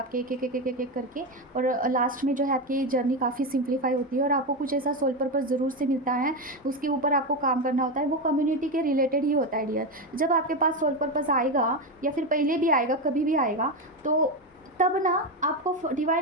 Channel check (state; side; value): normal; both; correlation 0.13